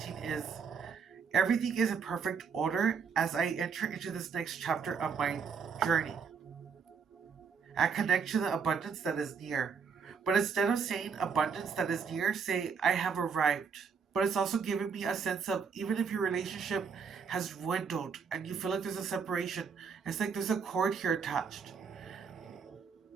is everything is in perfect order as I enter into this next chapter of my journey. I connect to the abundance that is near. But instead of saying abundance that is near, say I have arrived. But it's also giving me a sense of even if your relationship has dwindled and you feel like there's a separation, it's like there's a cord here attached.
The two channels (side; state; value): left; quieter; 6.0 dB